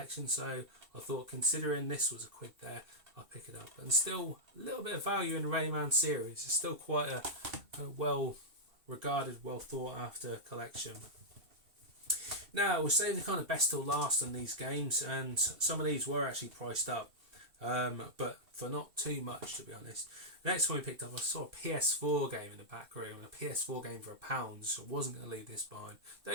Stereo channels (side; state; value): left; late; 2.6 ms